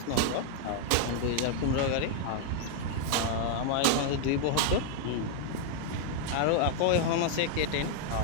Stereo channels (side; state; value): both; different; correlation 0.00